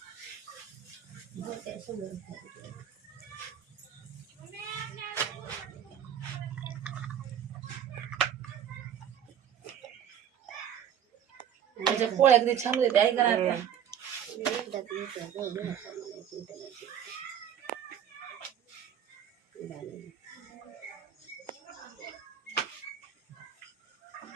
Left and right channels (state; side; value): quieter; left; 9.2 dB